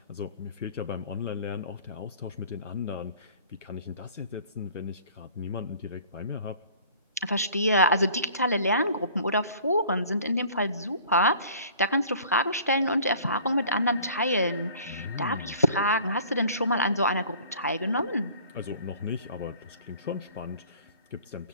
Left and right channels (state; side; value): inverted; both; correlation -0.49